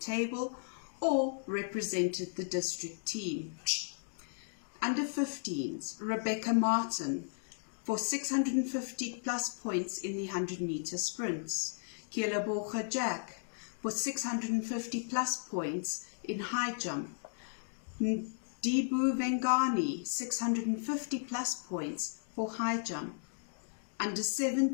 or represented the district team. Under 15s, Rebecca Martin for 650 plus points in the 100 meter sprints. Kielabocha Jack for 650 plus points in high jump. Dibu Vengani, 650 plus points for high jump. Under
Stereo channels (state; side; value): silent; right; 54 dB below the other